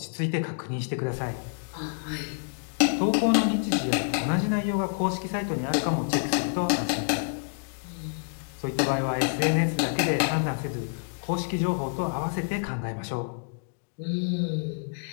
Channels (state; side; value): silent; right; digital silence